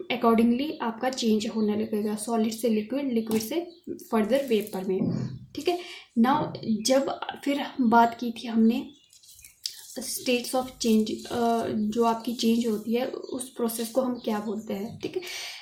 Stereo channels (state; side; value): identical; both; correlation 1.00